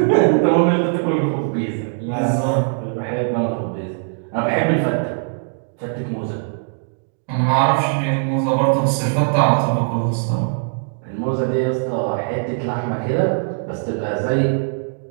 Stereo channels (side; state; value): left; silent; digital silence